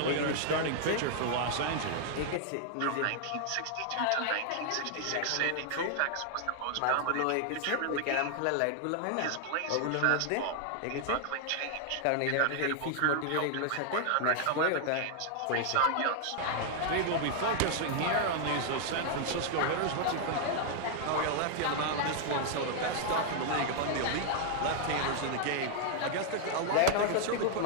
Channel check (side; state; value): both; different; correlation 0.00